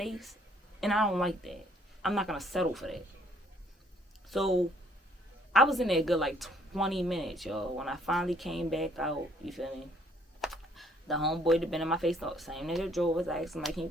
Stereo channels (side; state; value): both; normal; correlation 0.64